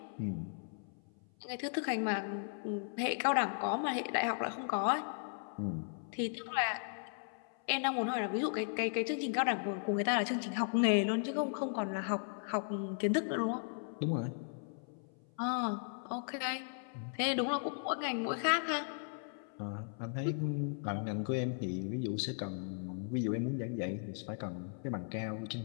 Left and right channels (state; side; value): silent; right; 53 dB below the other